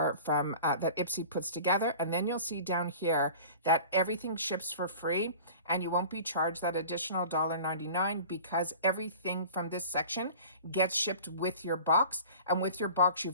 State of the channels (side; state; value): both; inverted; correlation -0.41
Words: from, that Ipsy puts together. And then you'll see down here that everything ships for free and you won't be charged that additional $1.99 because everything from this section gets shipped with your box. And with your box,